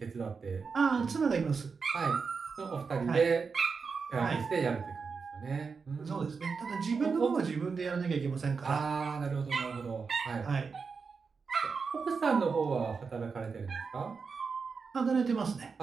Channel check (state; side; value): quieter; left; 5.2 dB